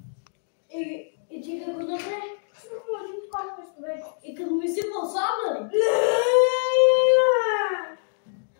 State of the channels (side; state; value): right; silent; digital silence